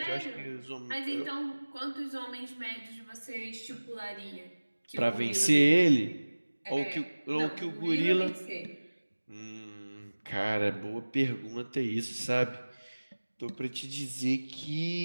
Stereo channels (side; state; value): both; inverted; correlation -1.00